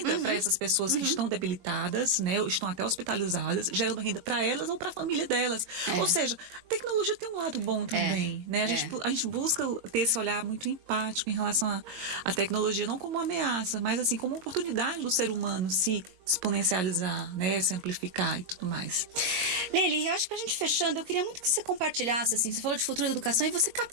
para essas pessoas que estão debilitadas, né? Estão até hospitalizadas, gerando renda para elas ou para a família delas. Ou seja, a tecnologia tem um lado bom também, né? A gente busca ter esse olhar muito empático em relação à tecnologia, não como uma ameaça, mas assim, como uma oportunidade do ser humano se exponencializar, né, se amplificar e tudo mais. Lely, eu acho que pra gente fechando, eu queria muito que você compartilhasse, assim, você falou de futuro da educação e você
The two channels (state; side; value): late; left; 22 ms